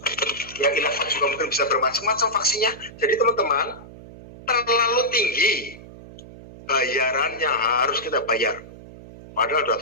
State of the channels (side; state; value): right; noise; hum, 17 dB below the sound